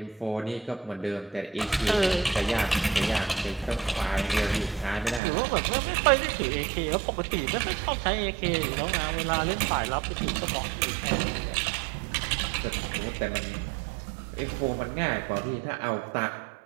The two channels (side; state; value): left; drops out; at 5.2 s